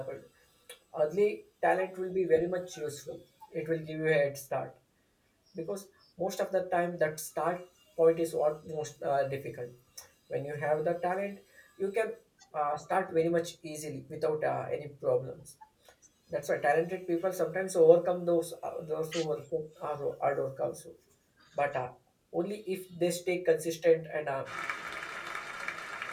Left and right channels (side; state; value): both; identical; correlation 1.00